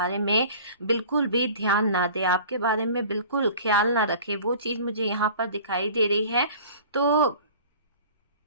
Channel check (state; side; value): inverted; both; correlation -0.43